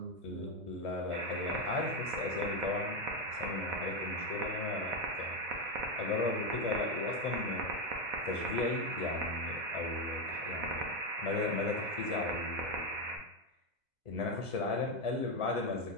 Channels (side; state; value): left; late; 2.0 ms